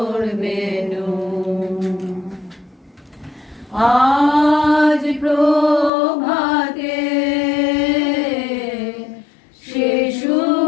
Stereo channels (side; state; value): right; drops out; at 5.9 s